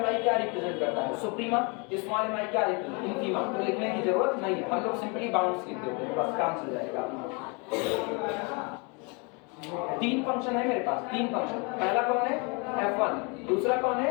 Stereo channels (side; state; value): right; quieter; 31.6 dB